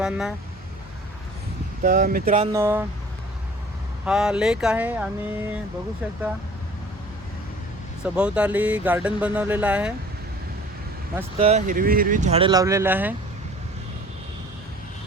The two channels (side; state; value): both; normal; correlation 0.48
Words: तर मित्रांनो, हा लेक आहे आणि बघू शकता सभोवताली गार्डन बनवलेलं आहे. मस्त हिरवी हिरवी झाडे लावलेले आहे.